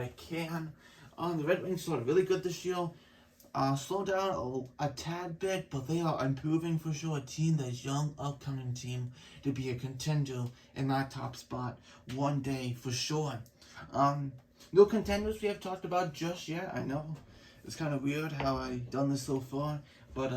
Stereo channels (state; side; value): identical; both; correlation 1.00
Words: can. The Red Wings started really good this year. Slow down a tad bit, but they are improving for sure. A team that's young, upcoming team to be a contender in that top spot one day for sure. No contenders we have talked about just yet. I know it's kind of weird how I've done this so far, but